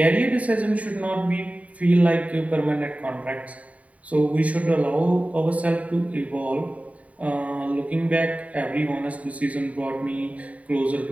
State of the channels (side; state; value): left; late; 0.068 ms